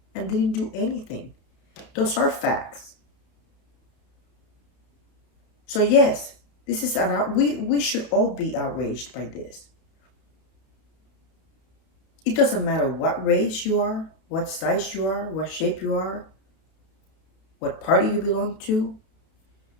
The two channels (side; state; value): right; late; 32 ms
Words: and didn't do anything. Those are facts. So yes, this is we should all be outraged by this. It doesn't matter what race you are, what size you are, what shape you are, what party you belong to.